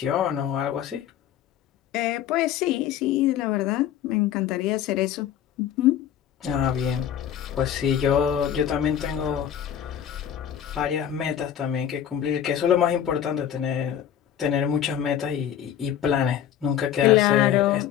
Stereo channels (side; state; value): right; quieter; 9.9 dB